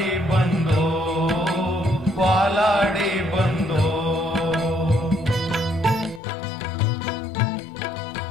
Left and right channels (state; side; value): drops out; right; at 6.2 s